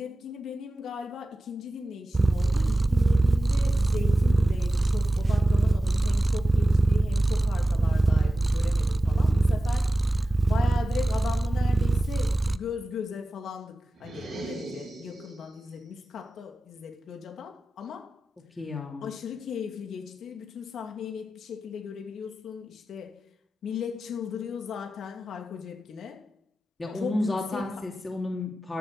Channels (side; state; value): both; normal; correlation 0.95